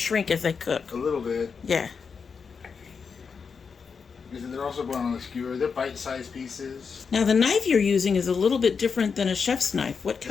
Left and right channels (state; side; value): quieter; right; 5.7 dB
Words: as they cook. A little bit. Yeah. Because they're also going on the skewer. They're bite-sized pieces. Now the knife you're using is a little bit different than a chef's knife. What